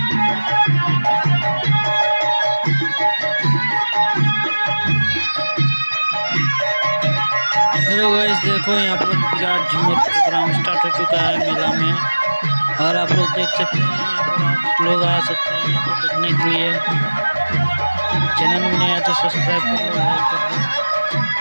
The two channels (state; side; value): inverted; both; correlation -1.00